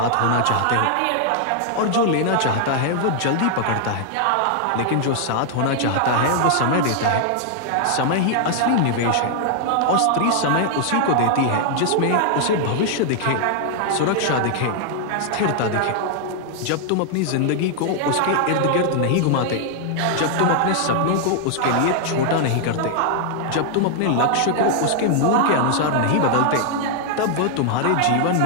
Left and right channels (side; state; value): both; different; correlation 0.00